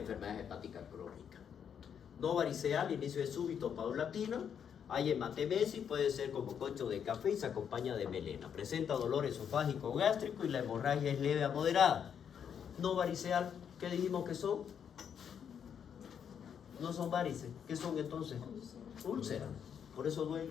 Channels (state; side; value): quieter; right; 8.0 dB